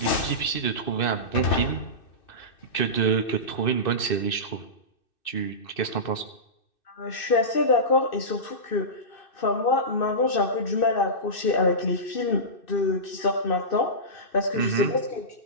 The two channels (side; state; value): right; late; 2.6 ms